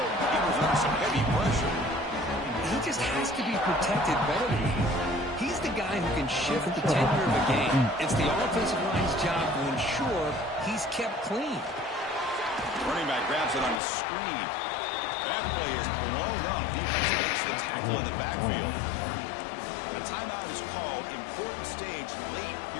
He was under some heavy pressure. He just has to be protected better than that. He's the guy who can shift the tenure of a game. It's the offensive line's job to ensure he's kept clean. Running back grabs it on the screen. That play is blown up. Defense makes the tackle in the backfield. A timeout is called. Important stage late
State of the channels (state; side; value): drops out; right; at 13.8 s